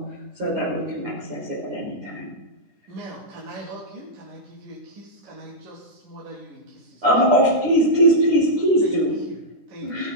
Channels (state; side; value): late; left; 10 ms